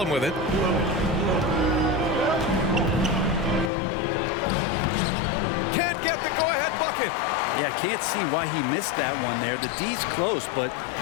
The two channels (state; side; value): drops out; right; at 3.7 s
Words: with it. Can't get the go-ahead bucket. Yeah, can't see why he missed that one there. The D's close, but